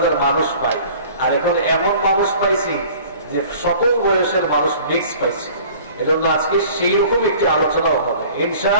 মানুষ পাই, আর এখন এমন মানুষ পাইছি যে সকল বয়সের মানুষ মিক্স পাইছি। এজন্য আজকে সেই রকম একটি আলোচনাও হবে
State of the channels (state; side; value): inverted; both; correlation -0.47